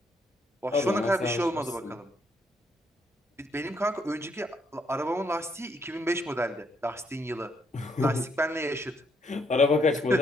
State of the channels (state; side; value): normal; both; correlation 0.73